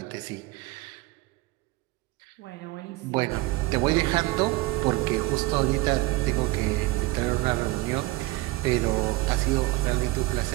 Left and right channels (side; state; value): left; quieter; 20.4 dB